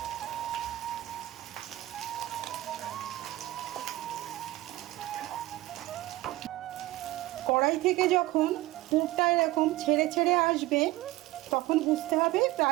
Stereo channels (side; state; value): left; quieter; 17.5 dB